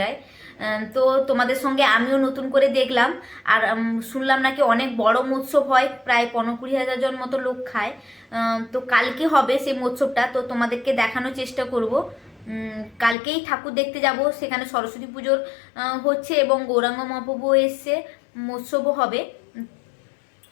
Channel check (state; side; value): drops out; right; at 13.2 s